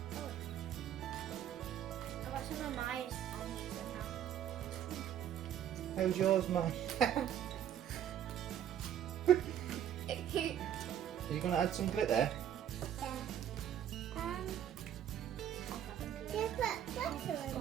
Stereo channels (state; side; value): quieter; left; 10.2 dB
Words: I got some of mine. How's yours, Mike? Are you going to add some glitter?